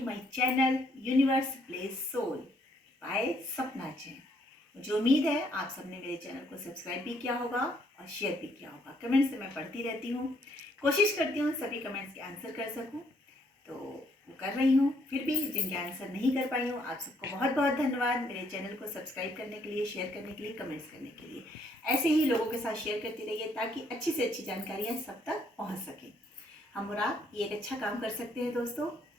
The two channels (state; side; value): normal; both; correlation 0.68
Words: my channel universe place soul by Sapna Jain. मुझे उम्मीद है आप सबने मेरे चैनल को सब्सक्राइब भी किया होगा और शेयर भी किया होगा। कमेंट्स से मैं पढ़ती रहती हूँ, कोशिश करती हूँ सभी कमेंट्स के आंसर कर सकूँ, तो वो कर रही हूँ। फिर भी जिनके आंसर नहीं कर पाई हूँ, आप सबको बहुत बहुत धन्यवाद मेरे चैनल को सब्सक्राइब करने के लिए, शेयर करने के लिए, कमेंट्स करने के लिए। ऐसे ही लोगों के साथ शेयर करती रहिए ताकि अच्छी से अच्छी जानकारियाँ सब तक पहुँच सकें। हम और आप ये एक अच्छा काम कर सकते हैं दोस्तों,